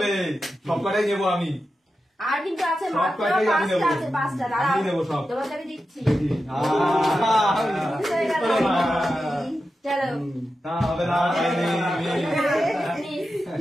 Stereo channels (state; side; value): normal; both; correlation 0.91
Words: সব কটাই নেবো আমি। আর কিন্তু আছে সব মাত্র কয়টাই আমি 5টা নেবো। আছে, 5টা। দাঁড়াও আমি নেবো সব। তোমাকে দিচ্ছি। দেখি চলো না হবে না।